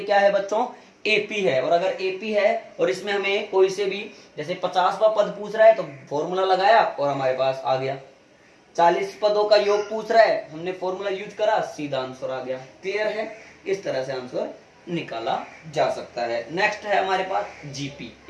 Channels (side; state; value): both; identical; correlation 1.00